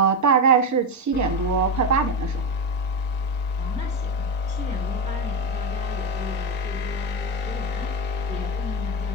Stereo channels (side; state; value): both; normal; correlation 0.12